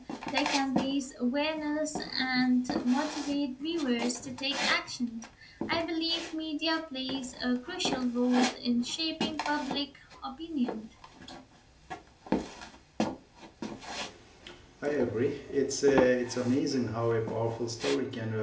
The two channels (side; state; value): both; identical; correlation 1.00